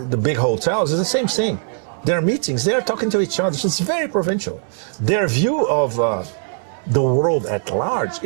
big hotels, it's the same thing. There are meetings, they're talking to each other. So it's very provincial. Their view of the world at large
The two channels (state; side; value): silent; left; 66 dB below the other